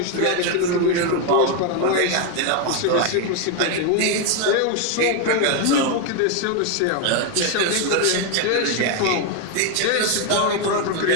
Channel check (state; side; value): different; both; correlation 0.01